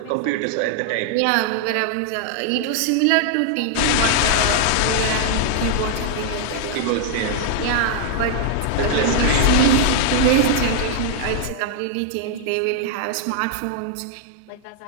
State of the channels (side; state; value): both; different; correlation -0.01